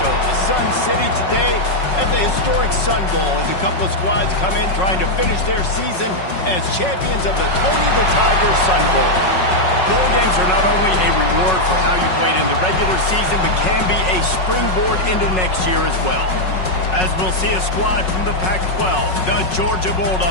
the Sun City, today at the historic Sun Bowl as a couple of squads come in trying to finish their season as champions of the Tony the Tiger Sun Bowl. Bowl games are not only a reward for how you played in the regular season, but can be a springboard into next year as well. As we'll see a squad from the Pac-12, the Georgia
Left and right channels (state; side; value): late; right; 5.4 ms